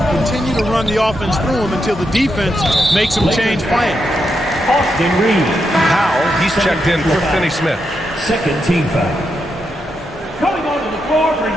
continue to run the offense through him until the defense makes him change plans. Austin Reeves. Powell, he's checked in for Finney-Smith. Second team foul. Coming onto the floor for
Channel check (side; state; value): both; normal; correlation 0.83